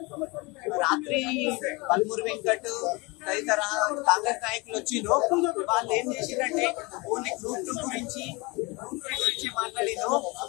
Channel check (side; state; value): right; quieter; 26.0 dB